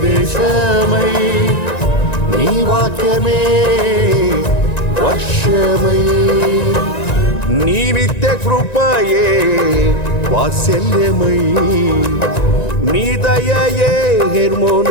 నీ వాక్యమే వర్షమై, నీ నిత్య కృపయే వాత్సల్యమై, నీ దయయే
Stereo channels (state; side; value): late; right; 1.9 ms